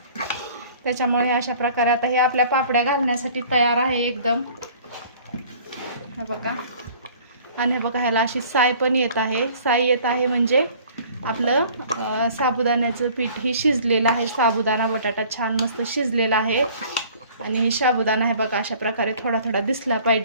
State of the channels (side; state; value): both; inverted; correlation -0.51